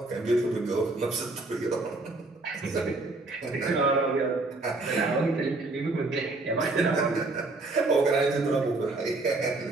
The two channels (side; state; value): left; quieter; 3.1 dB